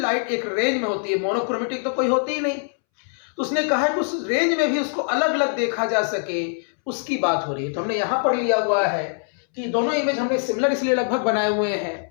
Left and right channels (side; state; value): right; silent; 63 dB below the other